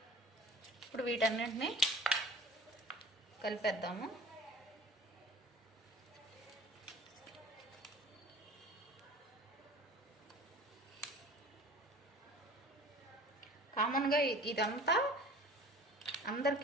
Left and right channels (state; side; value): normal; both; correlation 0.45